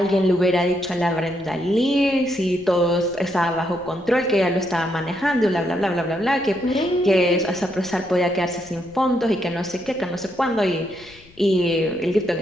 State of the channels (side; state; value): left; noise; rumble, 25 dB below the sound